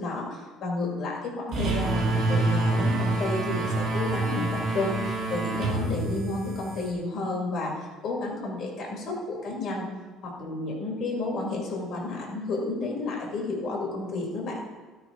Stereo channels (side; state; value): both; normal; correlation 0.61